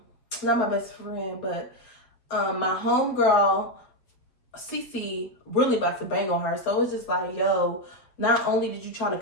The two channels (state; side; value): late; right; 7.8 ms